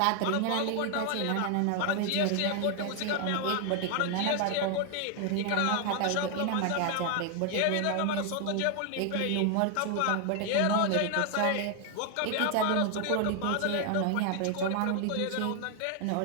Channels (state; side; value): different; both; correlation 0.00